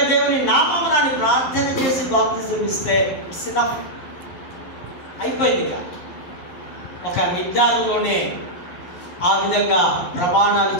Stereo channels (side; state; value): right; late; 11 ms